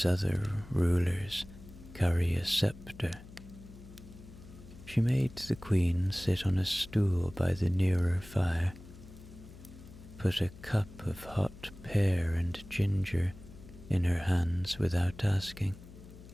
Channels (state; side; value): noise; left; hum, 18 dB below the sound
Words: other rulers carry a scepter. She made the Queen sit on a stool by the nearer fire, put a cup of hot pear and ginger in her hands without asking,